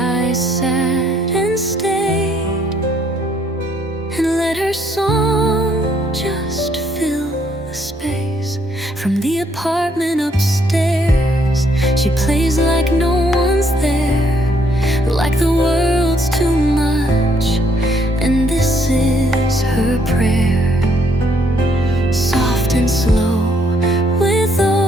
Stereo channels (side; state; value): both; normal; correlation 0.69